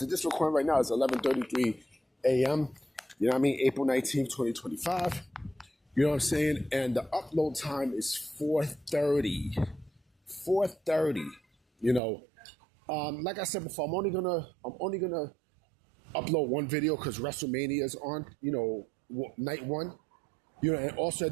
of this recording right now, it's 11:33 a.m. You know what I mean? April 19th, 2025. You know what I'm saying? And the upload time is 4:30. 4:30. You know, like I said before, I'm only gonna upload one video because WrestleMania is on. You know, night one. You know, and also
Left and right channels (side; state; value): left; drops out; at 12.0 s